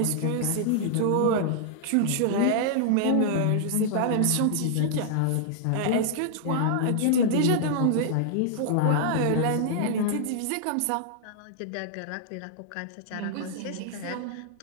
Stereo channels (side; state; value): both; different; correlation -0.01